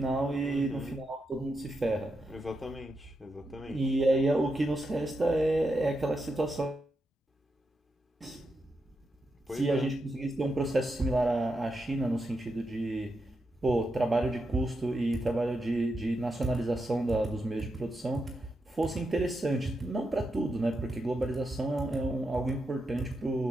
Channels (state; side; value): normal; both; correlation 0.85